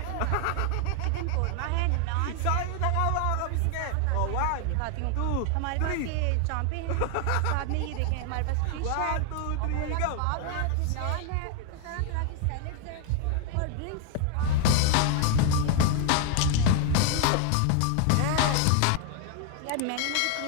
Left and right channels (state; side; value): different; both; correlation 0.01